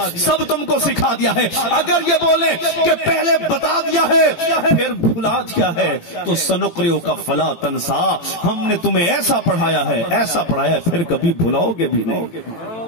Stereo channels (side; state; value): right; late; 17 ms